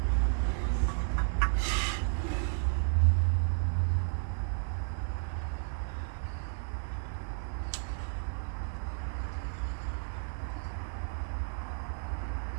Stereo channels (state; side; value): silent; left; digital silence